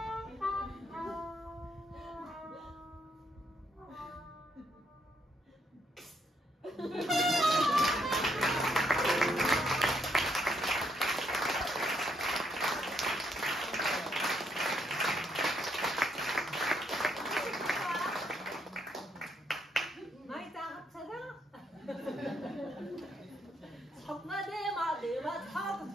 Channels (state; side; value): normal; both; correlation 0.74